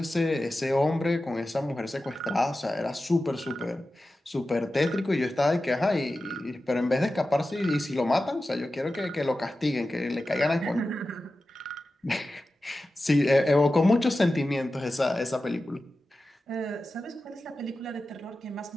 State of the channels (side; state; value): both; normal; correlation 0.93